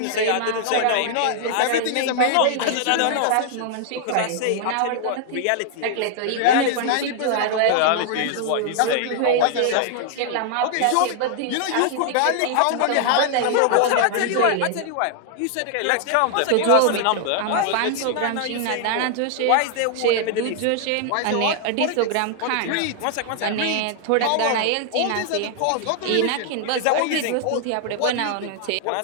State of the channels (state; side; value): different; both; correlation 0.00